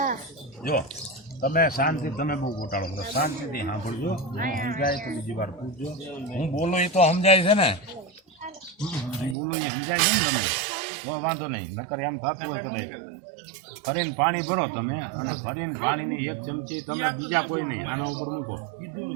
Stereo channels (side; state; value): left; drops out; at 9.3 s